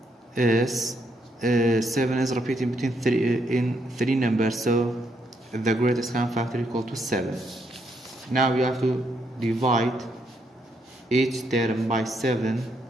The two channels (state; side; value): normal; both; correlation 0.76